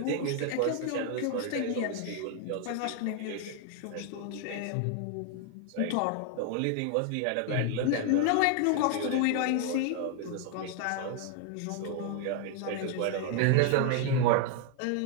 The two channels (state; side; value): different; both; correlation 0.00